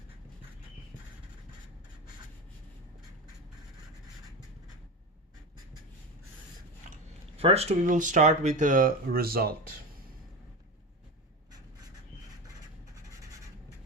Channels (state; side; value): normal; both; correlation 0.23